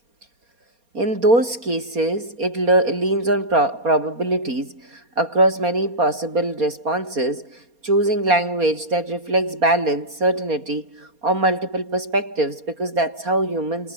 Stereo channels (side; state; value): left; late; 4.3 ms